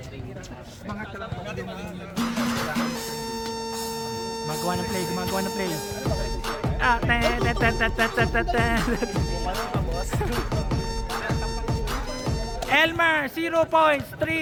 Gumagawa ng play. Elmer, 0 points,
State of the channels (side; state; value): both; identical; correlation 1.00